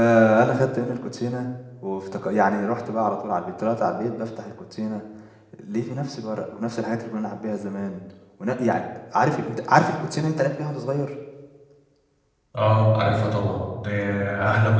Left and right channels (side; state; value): both; identical; correlation 1.00